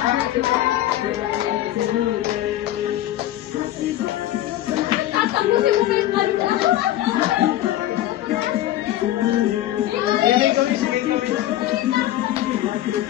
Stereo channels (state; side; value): quieter; right; 13.8 dB